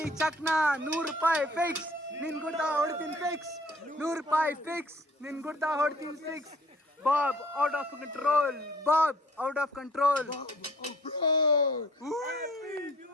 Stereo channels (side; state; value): both; normal; correlation 0.54